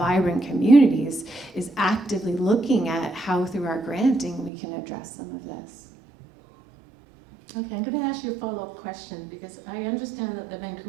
communities, is actively looking at how through our granting we can address some of this. Okay, I'm going to ask you a follow-up question because I understand that the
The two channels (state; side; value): drops out; left; at 4.5 s